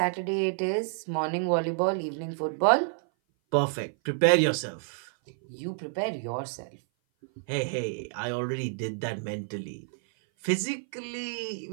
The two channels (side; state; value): left; silent; 56 dB below the other